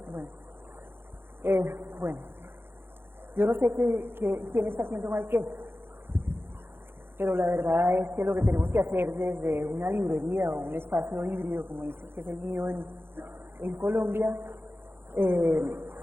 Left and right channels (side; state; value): left; late; 0.11 ms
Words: Bueno, yo no sé quién está haciendo mal qué, pero la verdad es que lo que tenemos que hacer desde una librería o un espacio híbrido, como dice que es el mío en Colombia,